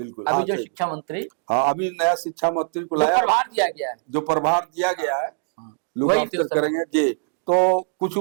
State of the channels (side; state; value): left; silent; digital silence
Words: अभी जो शिक्षा मंत्री, हाँ अभी नया शिक्षा मंत्री को लाया, प्रभार दिया गया है, जो प्रभार दिया गया है, लोग करेंगे जी। तो कुछ